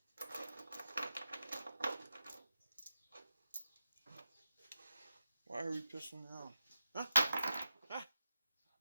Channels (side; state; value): both; inverted; correlation -0.89